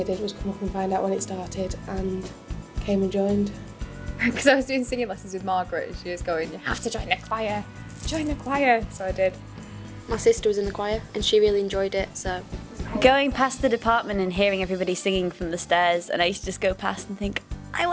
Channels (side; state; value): both; identical; correlation 1.00